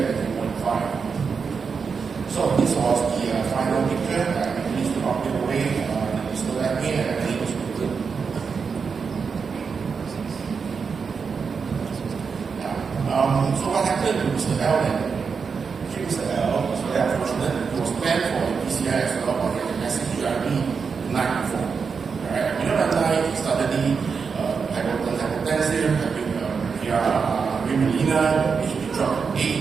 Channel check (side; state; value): left; quieter; 5.6 dB